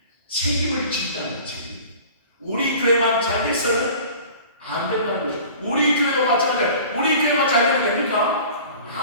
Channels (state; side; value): inverted; both; correlation -0.43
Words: 책임을 진다는 책임. 우리 교회만 잘 돼서는 안 된다는 거죠. 우리 교회도 마찬가지예요. 우리 교회만 잘 되면 됩니까?